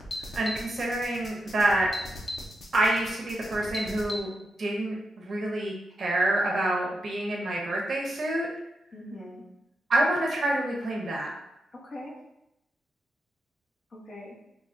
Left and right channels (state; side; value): normal; both; correlation 0.86